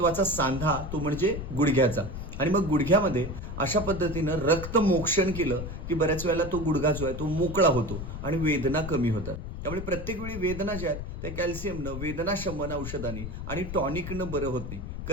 सांधा तो म्हणजे गुडघ्याचा. आणि मग गुडघ्यामध्ये अशा पद्धतीनं रक्तमोक्षण केलं की बऱ्याच वेळेला तो गुडघा जो आहे तो मोकळा होतो आणि वेदना कमी होतात. त्यामुळे प्रत्येक वेळी वेदना ज्या आहेत त्या कॅल्शियमनं, वेदना शमन औषधांनी आणि टॉनिकनं बरं होत नाही.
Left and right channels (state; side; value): noise; left; rumble, 7 dB below the sound